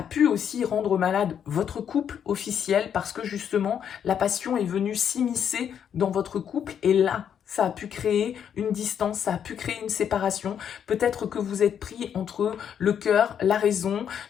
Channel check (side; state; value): right; quieter; 8.5 dB